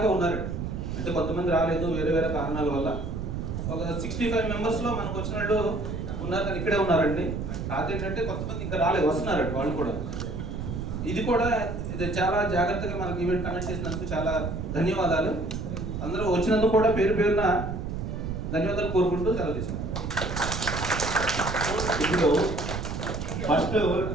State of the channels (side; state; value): right; noise; rumble, 4 dB below the sound